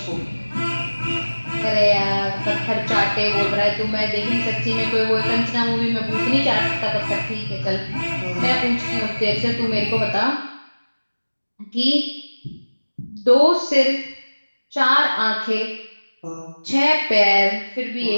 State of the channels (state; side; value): inverted; both; correlation -1.00